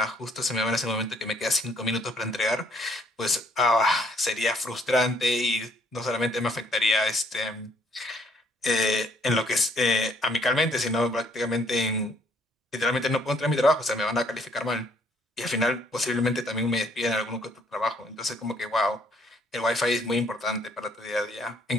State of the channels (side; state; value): both; normal; correlation 0.65